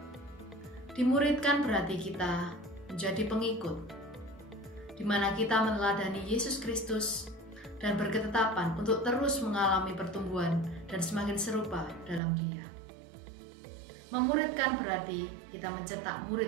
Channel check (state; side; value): drops out; left; at 12.2 s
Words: Dimuridkan berarti kita menjadi pengikut, di mana kita meneladani Yesus Kristus dan berketetapan untuk terus mengalami pertumbuhan dan semakin serupa dalam Dia. Memuridkan berarti kita mencetak